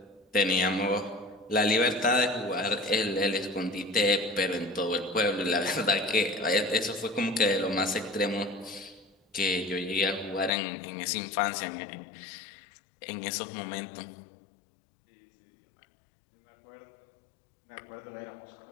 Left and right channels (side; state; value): right; drops out; at 10.5 s